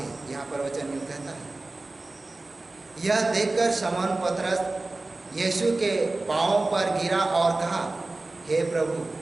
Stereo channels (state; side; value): quieter; left; 3.1 dB